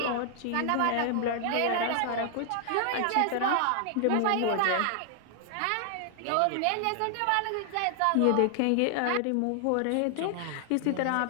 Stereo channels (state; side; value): different; both; correlation 0.00